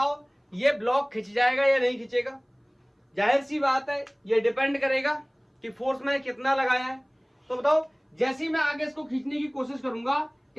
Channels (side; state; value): both; identical; correlation 1.00